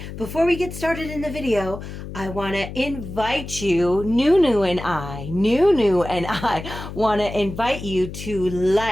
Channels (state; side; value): noise; left; hum, 10 dB below the sound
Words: Before we get started in the video, I want to invite you, Nunu and I want to invite you to